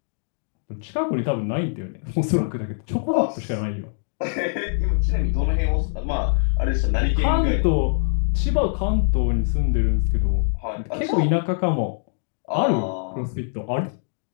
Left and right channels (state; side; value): silent; right; digital silence